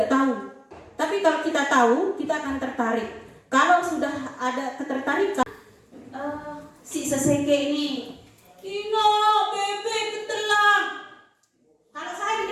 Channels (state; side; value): identical; both; correlation 1.00